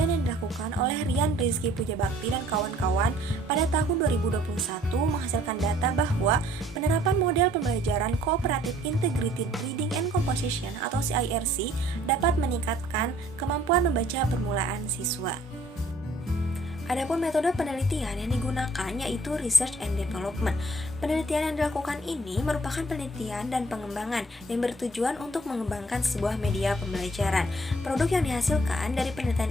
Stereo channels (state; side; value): normal; both; correlation 0.59